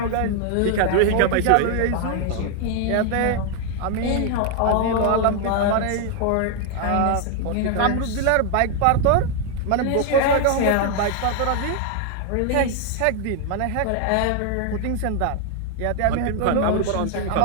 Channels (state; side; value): different; both; correlation 0.00